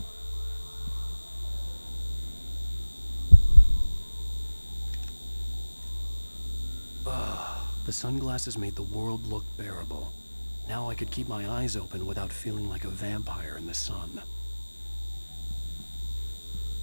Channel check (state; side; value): inverted; both; correlation -1.00